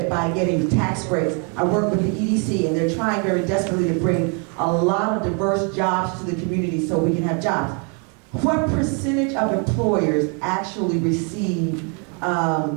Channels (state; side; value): quieter; left; 36.5 dB